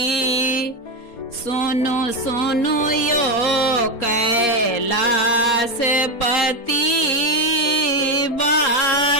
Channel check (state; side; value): late; right; 4.2 ms